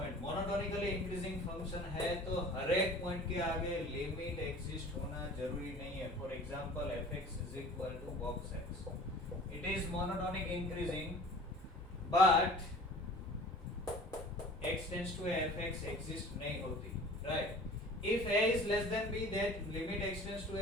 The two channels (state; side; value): normal; both; correlation 0.44